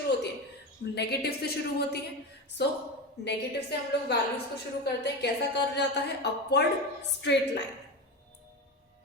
होती है, नेगेटिव से शुरू होती है। सो नेगेटिव से हम लोग वैल्यूज को शुरू करते हैं। कैसा कर्व जाता है, अपवर्ड स्ट्रेट लाइन।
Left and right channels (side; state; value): both; normal; correlation 0.22